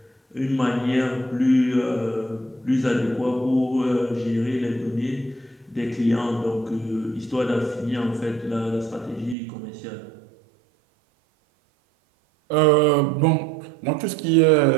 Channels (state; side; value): drops out; left; at 9.3 s